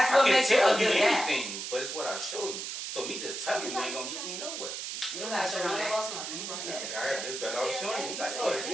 what I can makes you tell a good guy? anything, but it's what I show you. So me just telling you ain't gonna get me nowhere. You don't gotta show none of us nothing. You right. I got this better off showing you. Like, oh, is he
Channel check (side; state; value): right; noise; hiss, 6 dB below the sound